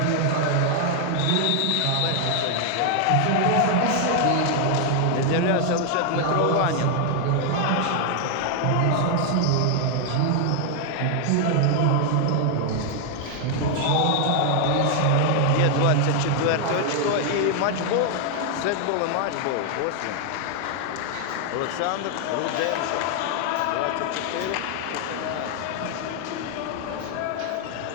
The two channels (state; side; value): different; both; correlation 0.00